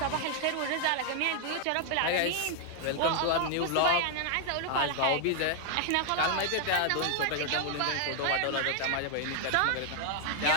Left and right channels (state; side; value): different; both; correlation 0.00